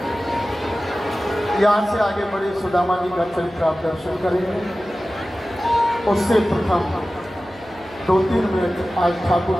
यहाँ से आगे बढ़े, सुदामा जी का चरित्र आप दर्शन करेंगे। उससे प्रथम 2-3 मिनट आज ठाकुर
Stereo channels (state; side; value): noise; right; hum, 24 dB below the sound